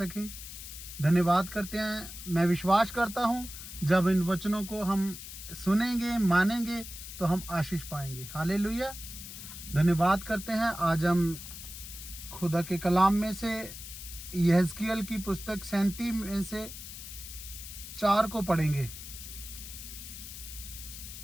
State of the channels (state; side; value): noise; left; hiss, 11 dB below the sound